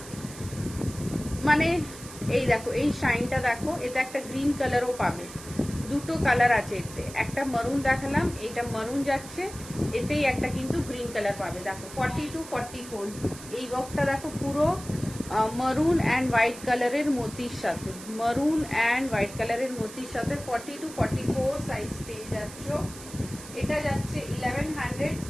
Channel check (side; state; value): right; noise; hiss, 15 dB below the sound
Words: মানে এই দেখো, এই শাইনটা দেখো. এতে একটা গ্রিন কালারও পাবে, দুটো কালার আছে এতে. একটা মারুন দেখালাম, এটা মারুন যাচ্ছে, এতেই একটা কিন্তু গ্রিন কালার পাবে. দেখো 42-44 এই ওয়ার্কটা দেখো, পুরো মারুন অ্যান্ড হোয়াইট কালারের মোতির সাথে, মারুন অ্যান্ড হোয়াইট কালারের মোতির সাথে 42-44 সাইজ পেয়ে যাচ্ছ. এটা যাচ্ছে 1100,